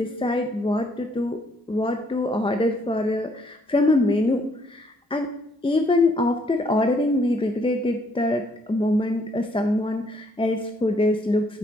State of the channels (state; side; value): normal; both; correlation 0.68